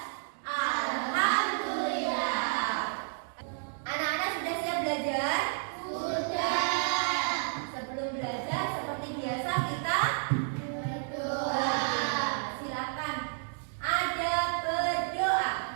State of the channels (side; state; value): left; silent; digital silence